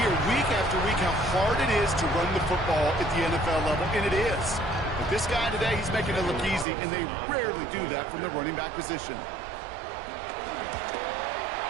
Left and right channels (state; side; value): drops out; left; at 6.7 s